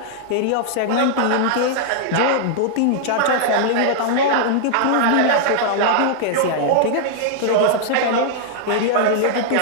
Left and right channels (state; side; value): different; both; correlation -0.01